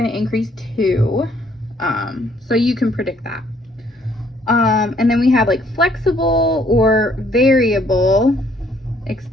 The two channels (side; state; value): both; normal; correlation 0.65